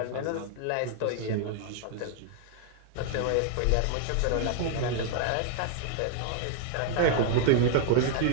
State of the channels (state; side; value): different; both; correlation 0.00